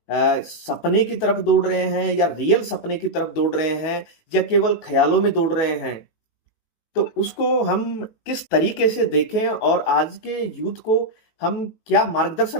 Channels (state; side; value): late; right; 19 ms